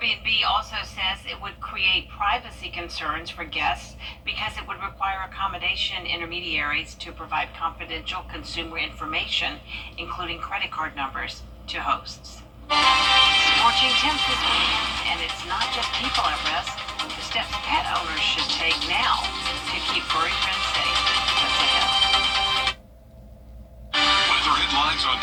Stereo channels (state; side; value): identical; both; correlation 1.00